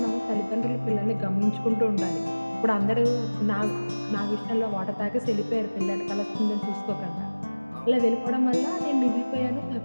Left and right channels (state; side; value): inverted; both; correlation -1.00